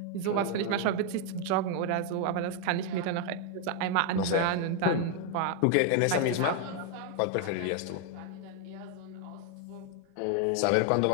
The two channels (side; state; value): both; different; correlation 0.01